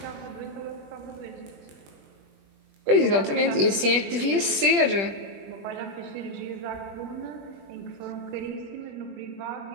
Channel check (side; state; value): left; late; 20 ms